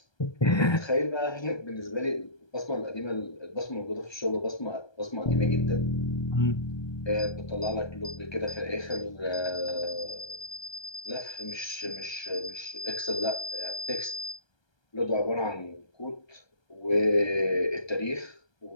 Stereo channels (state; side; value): late; right; 1.3 ms